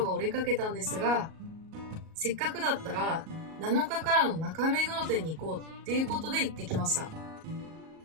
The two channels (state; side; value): late; left; 38 ms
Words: が折れかけたんですが、せっかくだったら7日からの中目黒店に行こうっていうことで行ってきました。